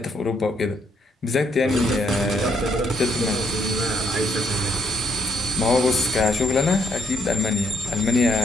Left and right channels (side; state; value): both; normal; correlation 0.72